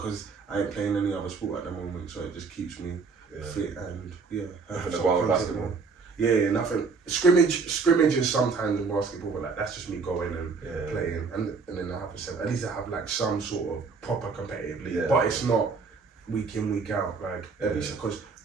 I ain't playing any other sport at the moment, so it just keeps me fit and Nothing to go on with basketball. Yeah, nothing. Scrimmage is sometimes in basketball, but like that's just me going and playing, and then I have at least I have like some sort of proper competitive league, but it's not week in week out like at least because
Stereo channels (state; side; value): quieter; left; 4.8 dB